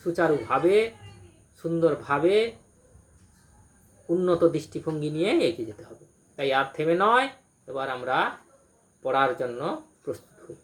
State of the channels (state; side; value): identical; both; correlation 1.00